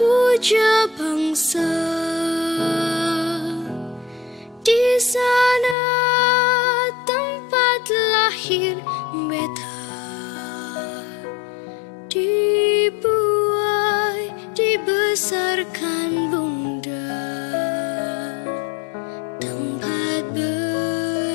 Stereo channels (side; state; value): right; drops out; at 5.8 s